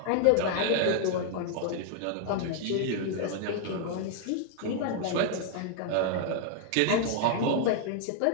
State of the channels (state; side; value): different; both; correlation 0.00